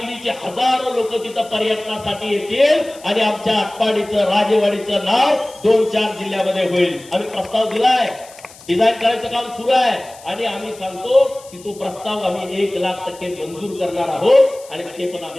हजारो लोक तिथं पर्यटनासाठी येतील आणि आमच्या आटपाडीचं राजेवाडीचं नाव 2-4 जिल्ह्यामध्ये होईल. आम्ही प्रस्ताव दिलाय, डिझाईन करायचं काम सुरू आहे आणि आम्ही सांगतो की तो प्रस्ताव आम्ही 1,00,000% मंजूर करणार आहोत आणि ते पण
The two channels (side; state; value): left; noise; hiss, 21 dB below the sound